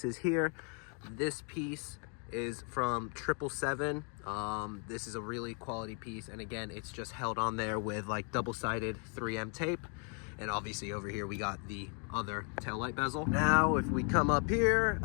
here. This piece is from 777. This is a really quality piece, and again, it's just held on there with like double-sided 3M tape. And obviously over here we got the other taillight bezel. Now if we come up here,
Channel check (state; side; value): quieter; right; 38.9 dB